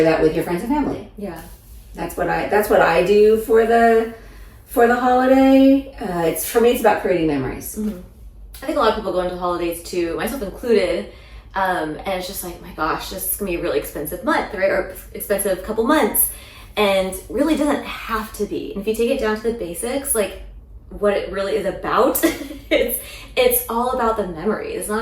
that with your friends and family. Yeah. That's what I do for the holiday. For me, it's about creating memories. Mm-hmm. I think a lot of people go into the holidays too, myself included, and it's just like, my gosh, this is gonna be a really expensive month, right? Or expensive couple months, and really doesn't have to be. And if you take it down to the basics, like what it really is about, it's all about the memories. It's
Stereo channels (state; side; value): identical; both; correlation 1.00